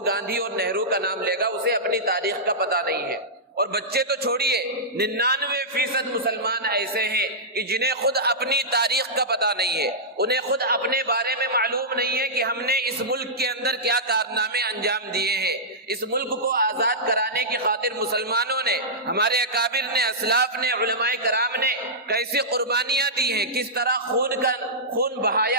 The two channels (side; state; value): both; normal; correlation -0.14